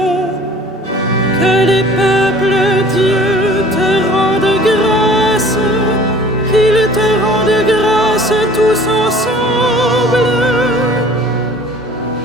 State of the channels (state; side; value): normal; both; correlation 0.48